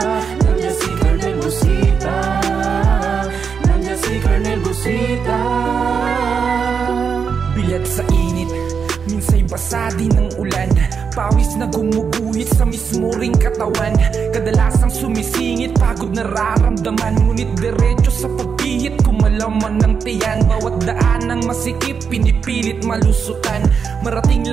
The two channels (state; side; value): quieter; left; 6.2 dB